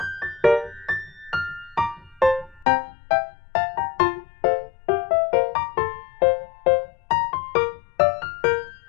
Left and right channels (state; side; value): drops out; right; at 2.7 s